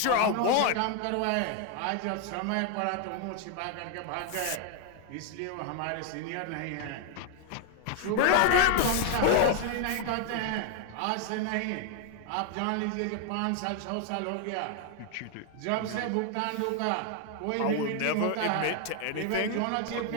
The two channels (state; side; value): different; both; correlation 0.00